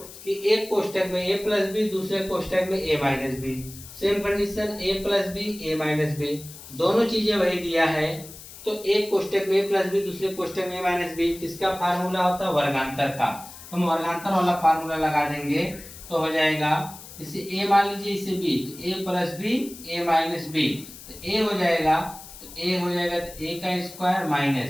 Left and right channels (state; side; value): noise; left; hiss, 16 dB below the sound